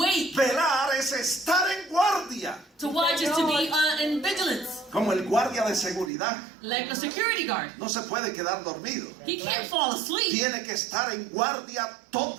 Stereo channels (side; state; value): left; drops out; at 6.1 s